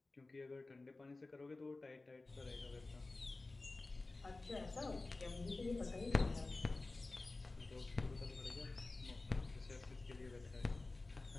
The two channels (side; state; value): right; quieter; 3.3 dB